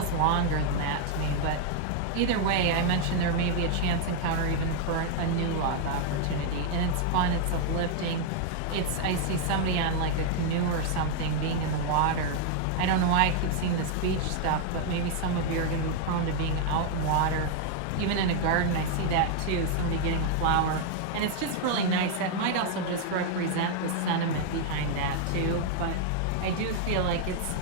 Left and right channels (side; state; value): both; different; correlation 0.00